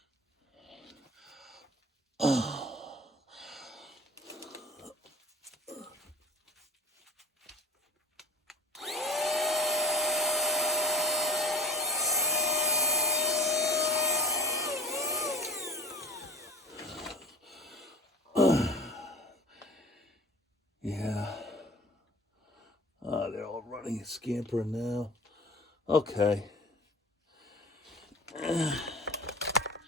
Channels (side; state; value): both; normal; correlation 0.41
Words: Yeah. They're all running and scampering now. Okay. Yeah,